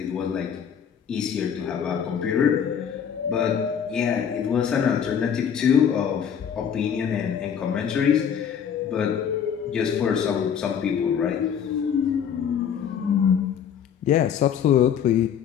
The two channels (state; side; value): quieter; right; 8.1 dB